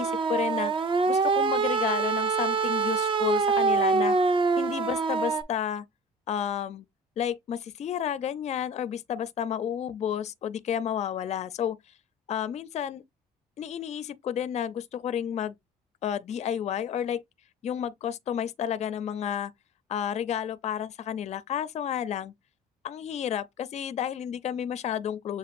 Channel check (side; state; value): both; normal; correlation 0.36